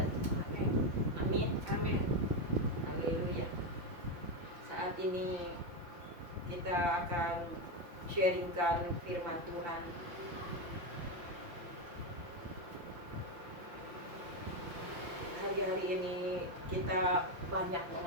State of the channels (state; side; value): late; left; 5.7 ms